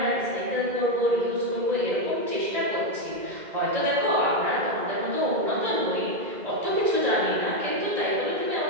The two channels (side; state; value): left; late; 2.0 ms